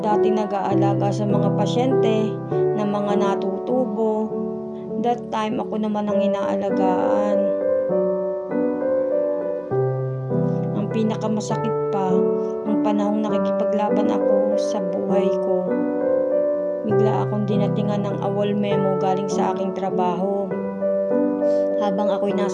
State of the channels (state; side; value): identical; both; correlation 1.00